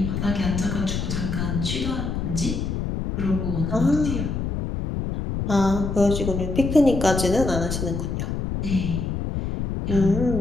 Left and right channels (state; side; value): noise; left; rumble, 2 dB below the sound